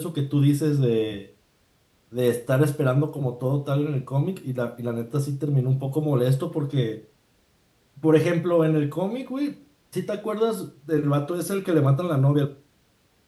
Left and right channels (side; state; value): both; identical; correlation 1.00